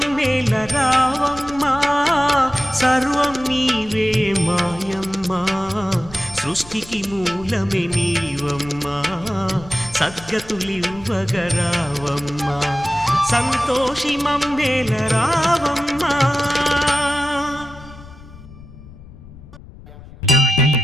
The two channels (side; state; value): left; noise; rumble, 18 dB below the sound